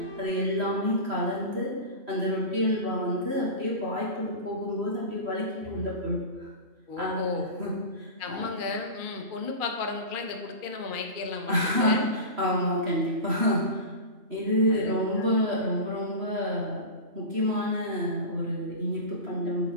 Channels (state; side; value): late; left; 3.1 ms